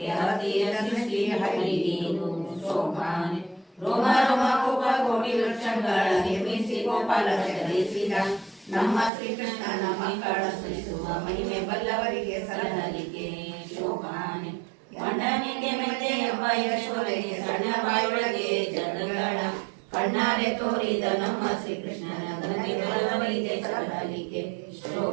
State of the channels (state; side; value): drops out; left; at 9.1 s